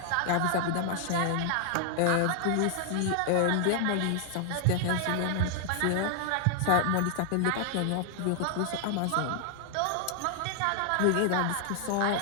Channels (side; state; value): both; different; correlation 0.00